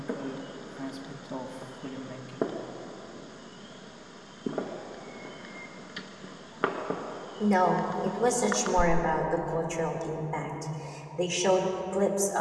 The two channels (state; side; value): identical; both; correlation 1.00